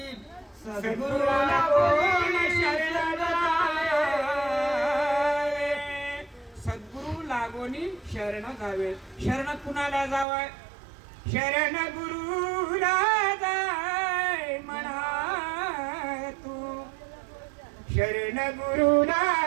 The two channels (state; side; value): drops out; left; at 10.2 s